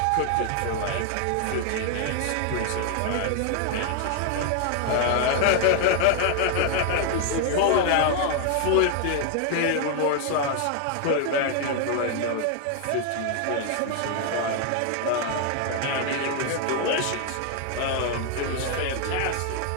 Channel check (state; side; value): different; both; correlation 0.00